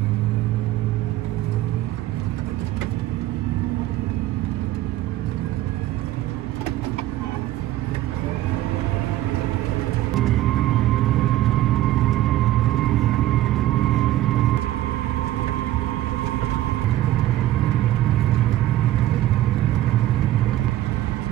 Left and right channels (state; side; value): quieter; left; 14.4 dB